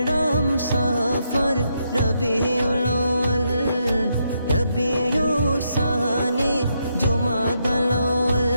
সফর রবিউল আউয়াল রবিউস সানি জুমাদাল আউয়াল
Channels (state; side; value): inverted; both; correlation -0.79